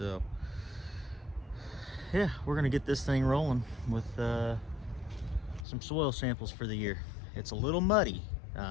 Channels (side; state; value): right; drops out; at 5.7 s